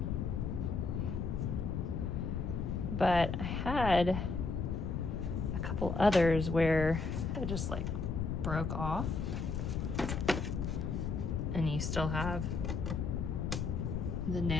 But I had a couple others where I just like broke off. And you still have the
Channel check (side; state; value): left; noise; rumble, 1 dB below the sound